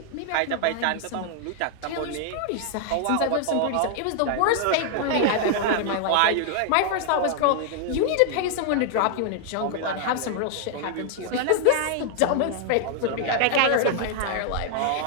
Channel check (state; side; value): different; both; correlation 0.00